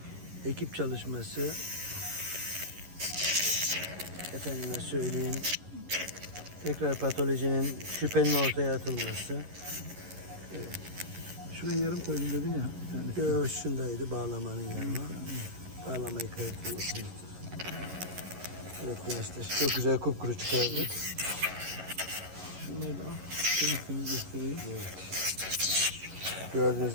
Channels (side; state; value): left; late; 11 ms